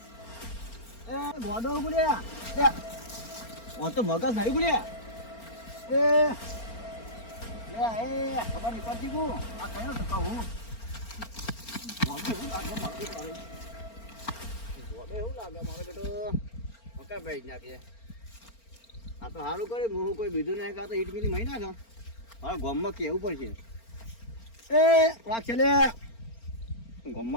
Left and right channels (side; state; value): right; late; 4.4 ms